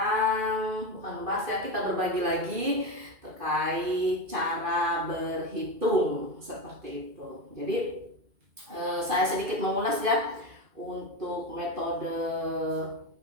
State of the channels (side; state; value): left; late; 2.4 ms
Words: bukan membahas ya, kita berbagi lagi terkait cara berhitung seperti itu. Jadi saya sedikit mengulas ya untuk metode